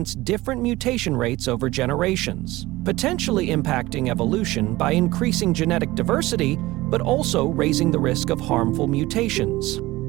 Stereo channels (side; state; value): left; quieter; 19.0 dB